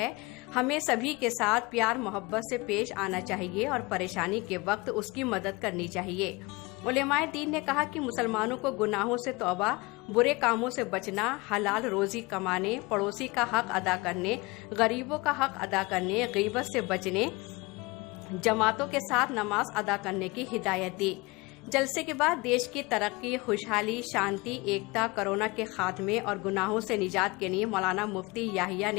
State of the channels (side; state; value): right; quieter; 24.5 dB